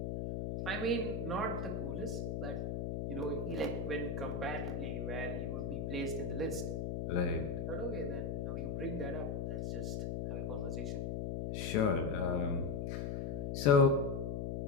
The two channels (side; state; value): left; noise; hum, 2 dB below the sound